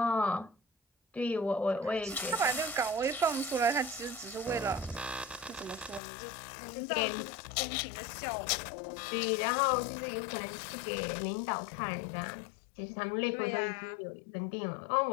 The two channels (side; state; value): right; drops out; at 6.0 s